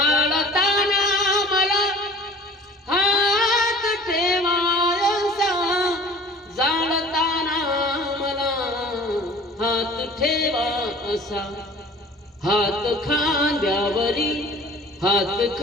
मला हात ठेवायचा जाळताना मला हात ठेवा असा हात खांद्यावरी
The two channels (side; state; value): both; normal; correlation 0.46